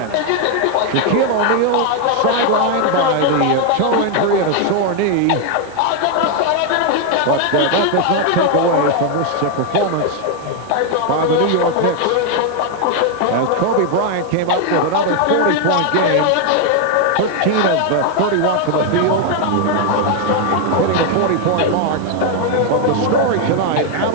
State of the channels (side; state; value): both; different; correlation 0.00